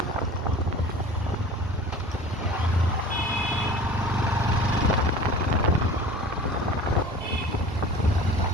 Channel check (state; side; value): normal; both; correlation 0.41